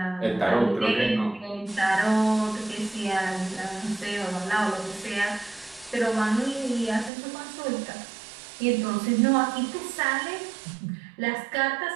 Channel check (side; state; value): left; drops out; at 7.1 s